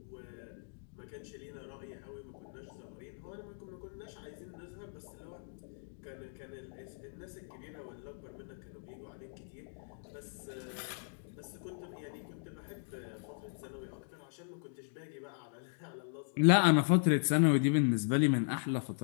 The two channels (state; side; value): silent; right; digital silence